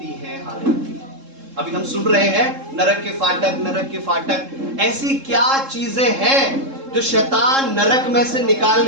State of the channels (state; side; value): late; left; 3.7 ms